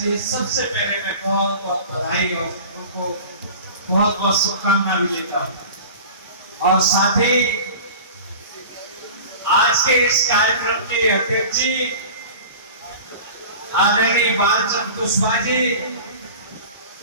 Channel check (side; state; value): both; inverted; correlation -0.38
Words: सबसे पहले मैं बहुत बहुत बधाई और उनको बहुत बहुत शुभकामना भी देता हूं। और साथ ही आज के इस कार्यक्रम के अध्यक्ष जी आदरणीय बालचंद्र कुशवाहा जी,